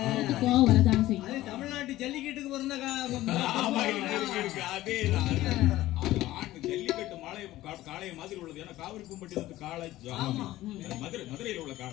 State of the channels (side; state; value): right; quieter; 15.9 dB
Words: தமிழ்நாட்டு ஜல்லிக்கட்டுக்கு பிறந்த அதே ஜல்லிக்கட்டு காளைய மாதிரி உள்ளது. ஏன்னா காவிரி பூம்பட்டி காளை மதுரையில் உள்ள